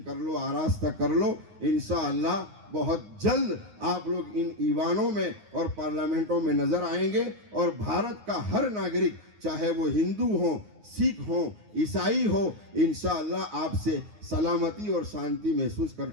کر لو، آراستہ کر لو. انشاءاللہ بہت جلد آپ لوگ ان ایوانوں میں اور پارلیمنٹوں میں نظر آئیں گے، اور بھارت کا ہر ناگرک چاہے وہ ہندو ہوں، سکھ ہوں، عیسائی ہو، انشاءاللہ آپ سے سلامتی اور شانتی محسوس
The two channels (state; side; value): late; left; 9.6 ms